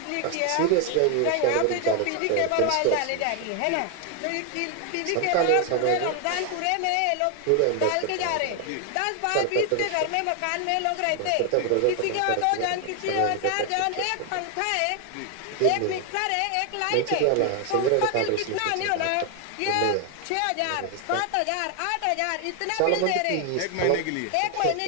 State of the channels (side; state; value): both; different; correlation 0.00